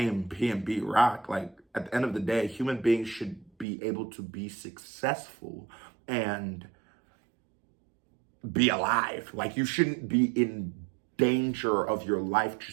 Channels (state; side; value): drops out; left; at 3.7 s